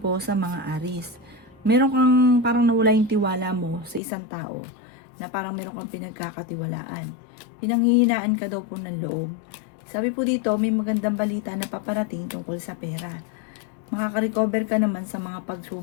sa mga Aries. Meron kang parang nawala yung tiwala mo sa isang tao na parang meron kang pinagkakatiwalaan. Pinanghihinaan ka daw po ng loob. Sabi po dito, may magandang balita na paparating tungkol sa pera. Makaka-recover ka naman sa mga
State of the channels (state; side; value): drops out; right; at 4.0 s